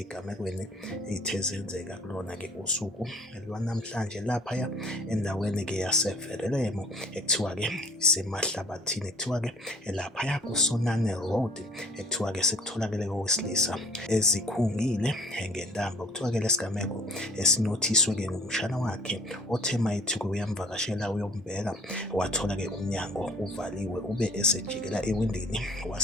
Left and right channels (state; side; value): normal; both; correlation 0.52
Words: ey'the zenzeka kulona-ke usuku lwanamhlanje laphaya endaweni-ke yaseVerulam ekuthiwa-ke isemahlabathini, ekuthiwa-ke laphaya kuSonane Road, ekuthiwa-ke sekutholakele owesilisa ezikhungile ngentambo. Kuthiwa-ke lesigameko esinothiswe-ke ngumshana wakhe othe mayethi-ke uyamvakashela uyombheka, wathola-ke umnyango uvaliwe ube esejikela ewindini,